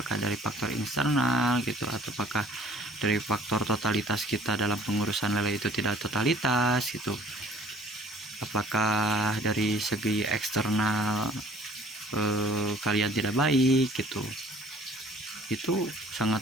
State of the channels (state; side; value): normal; both; correlation 0.54